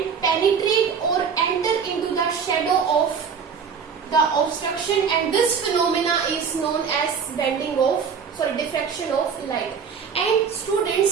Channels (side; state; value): left; quieter; 6.4 dB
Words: penetrate or enter into the shadow of the obstruction, and this phenomena is known as diffraction of light. And